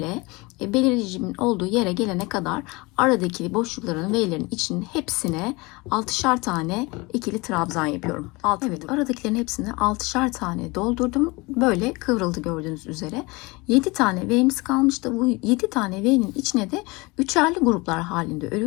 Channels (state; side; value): quieter; right; 24.8 dB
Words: belirleyicimin olduğu yere gelene kadar aradaki boşlukların V'lerin içinin hepsine 6'şar tane ikili trabzan yapıyorum. Evet, aradakilerin hepsine 6'şar tane doldurdum. Böyle kıvrıldı gördüğünüz üzere. 7 tane V'miz kalmıştı. Bu 7 tane V'nin içine de üçerli gruplar halinde